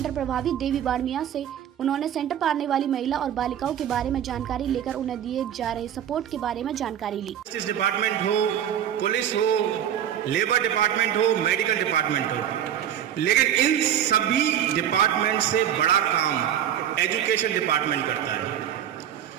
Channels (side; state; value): left; quieter; 10.1 dB